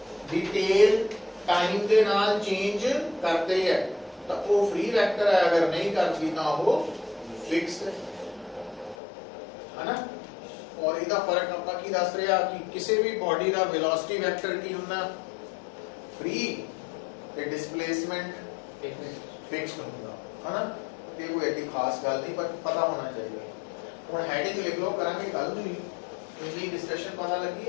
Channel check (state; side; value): drops out; right; at 9.0 s